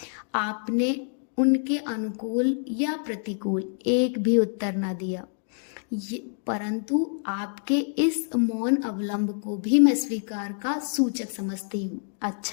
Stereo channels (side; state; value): right; silent; digital silence